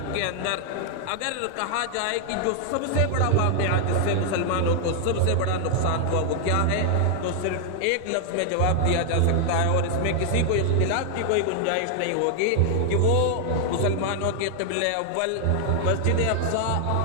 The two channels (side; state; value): both; different; correlation 0.00